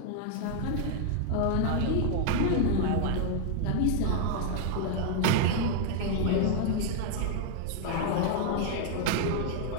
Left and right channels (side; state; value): both; different; correlation 0.00